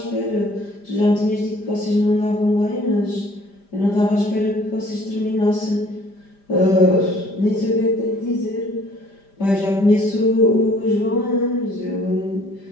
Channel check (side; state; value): right; late; 5.0 ms